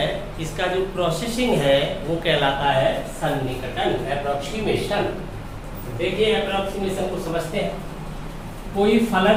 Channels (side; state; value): both; identical; correlation 1.00